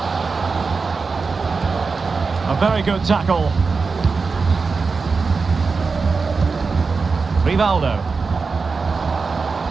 A very good tackle. Rivaldo.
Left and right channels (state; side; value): quieter; left; 4.6 dB